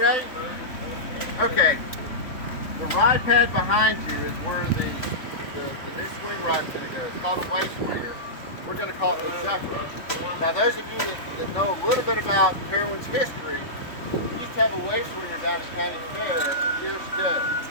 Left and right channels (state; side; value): late; right; 3.6 ms